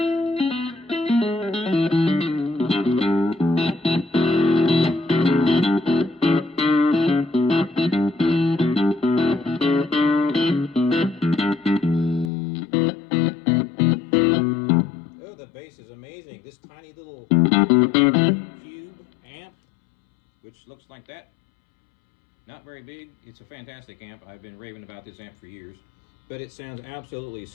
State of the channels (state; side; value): drops out; right; at 12.3 s